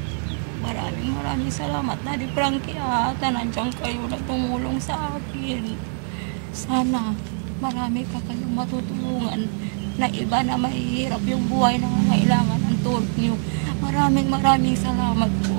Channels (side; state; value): left; silent; 56 dB below the other